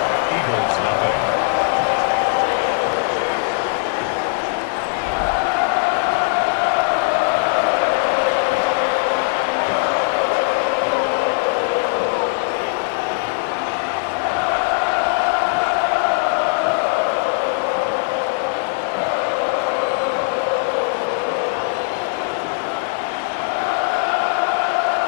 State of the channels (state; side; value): silent; right; 66 dB below the other